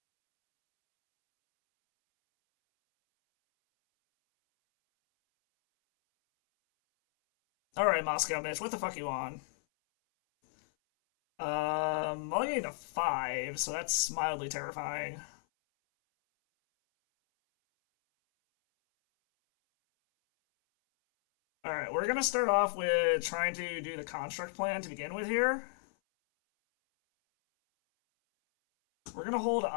Alright, Moscow Mitch, what the fuck you on? I'll get a 5, so that's mildly terrifying. Alright, we're gonna start off with trying to do the construct plan to begin with here. We're gonna hold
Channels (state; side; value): silent; right; 55 dB below the other